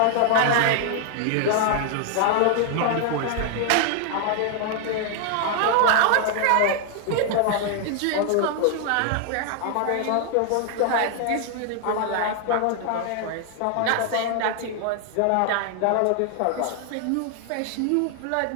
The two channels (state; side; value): different; both; correlation 0.00